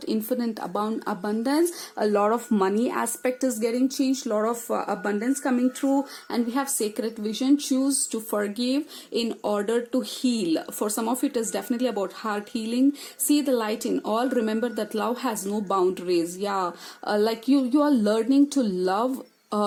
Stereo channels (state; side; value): identical; both; correlation 1.00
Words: infinite abundance. A lot of money aspect is getting changed, a lot of abundance coming through. And we have sacred vision, choose to forgive in order to heal. For some of you, it is definitely about heart healing. See the light in all. Remember that love has no boundaries. Yeah, like you are learning to love.